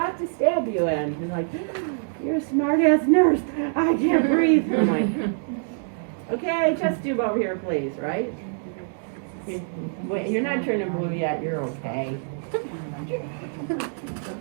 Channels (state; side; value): silent; left; digital silence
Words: to stab you in. And like, you're a smart-ass nurse. I can't breathe. And I'm like, okay, chest tube over here, please, right? Wait, you're not turning blue yet. You're okay.